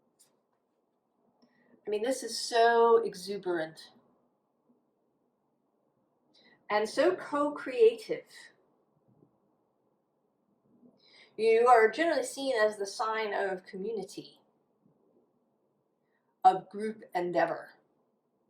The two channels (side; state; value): both; identical; correlation 1.00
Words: I mean, this is so exuberant and so co-creative. You are generally seen as the sign of community, of group endeavor.